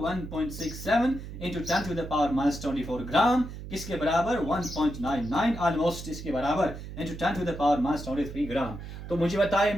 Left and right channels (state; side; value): noise; right; hum, 10 dB below the sound